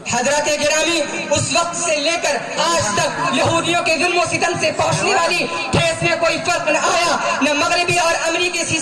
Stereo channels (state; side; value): identical; both; correlation 1.00